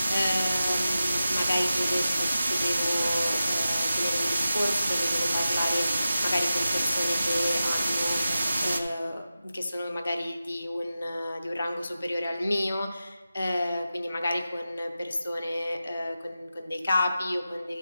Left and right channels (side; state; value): both; inverted; correlation -0.93